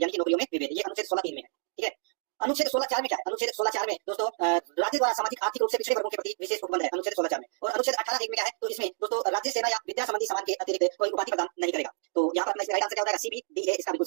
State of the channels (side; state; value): left; silent; digital silence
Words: कि नौकरियों में विभेद, ये अनुच्छेद 16 3 में है, ठीक है। अनुच्छेद 16 4 में क्या है, अनुच्छेद 16 4 में दोस्तों राज्य द्वारा सामाजिक आर्थिक रूप से पिछड़े वर्गों के प्रति विशेष उपबंध है, अनुच्छेद 16 4 में। और अनुच्छेद 18 1 में क्या है, तो इसमें दोस्तों राज्य सेना या विद्या संबंधी सामान के अतिरिक्त कोई उपाधि प्रदान नहीं करेगा। तो यहाँ पर अपना इसका राइट आंसर क्या हो जाएगा, CBDA, इसका बिल्कुल